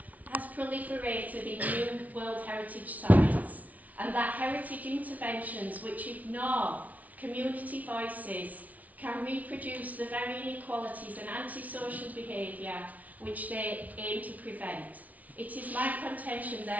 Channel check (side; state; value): left; late; 0.072 ms